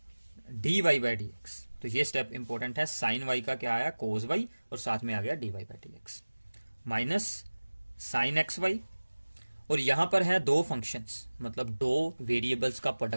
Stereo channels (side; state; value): both; inverted; correlation -1.00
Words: dy बाई डी एक्स। तो ये स्टेप इंपॉर्टेंट है, साइन y का क्या आया, कोज y, और साथ में आ गया dy by D x minus sine x y. और यहां पर है दो फंक्शंस, मतलब दो वेरिएबल्स का